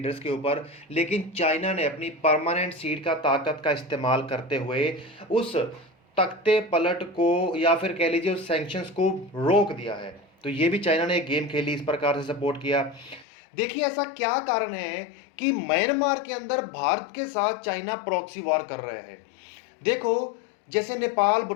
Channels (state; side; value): drops out; right; at 13.2 s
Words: के ऊपर। लेकिन चाइना ने अपनी परमानेंट सीट का ताकत का इस्तेमाल करते हुए उस तख्ते पलट को, या फिर कह लीजिए उस सैंक्शंस को, रोक दिया है। तो ये भी चाइना ने गेम खेली, इस प्रकार से सपोर्ट किया। देखिए, ऐसा क्या कारण है कि म्यांमार के अंदर भारत के साथ चाइना प्रॉक्सी वॉर कर रहे हैं? देखो, जैसे नेपाल,